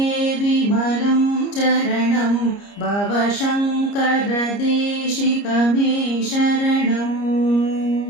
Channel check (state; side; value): late; right; 30 ms